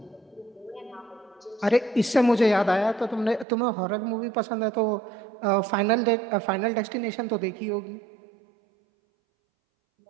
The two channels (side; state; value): left; drops out; at 3.5 s